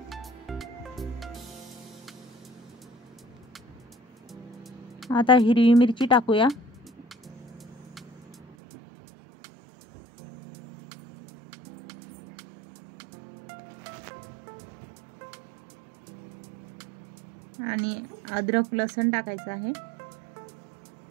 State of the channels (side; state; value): left; drops out; at 8.5 s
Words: आता हिरवी मिरची टाकूया। आणि अद्रक लसूण टाकायचं आहे।